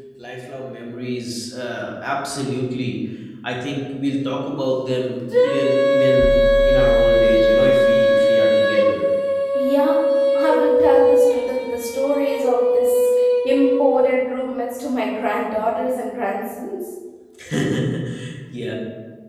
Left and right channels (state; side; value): identical; both; correlation 1.00